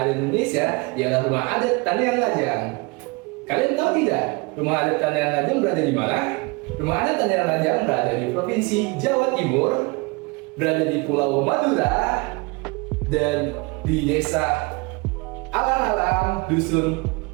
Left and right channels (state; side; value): quieter; left; 27.6 dB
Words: di Indonesia ialah rumah adat Tanian Lajang. Kalian tahu tidak, rumah adat Tanian Lajang berada di mana? Rumah adat Tanian Lajang berada di Provinsi Jawa Timur, berada di Pulau Madura, dan di Desa Alang-alang, Dusun